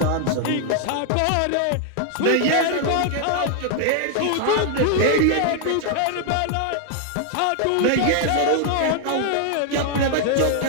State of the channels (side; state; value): both; different; correlation 0.00